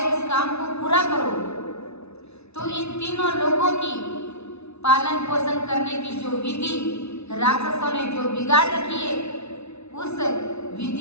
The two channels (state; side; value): late; right; 0.80 ms